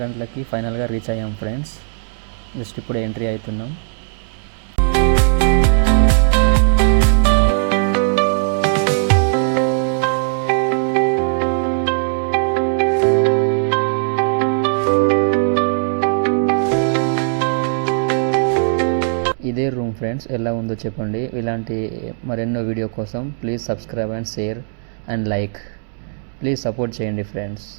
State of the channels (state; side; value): silent; left; digital silence